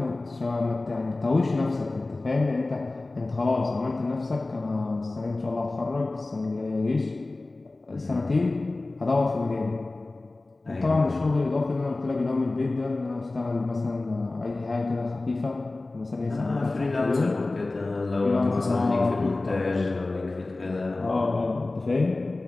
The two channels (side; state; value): right; quieter; 3.1 dB